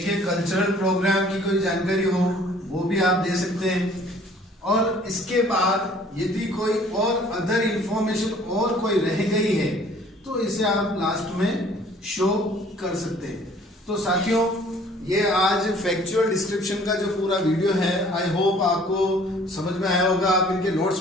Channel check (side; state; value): both; normal; correlation 0.54